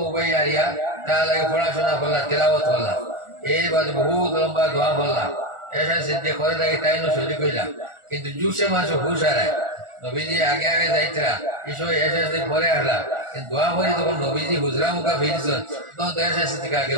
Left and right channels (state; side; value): late; left; 1.4 ms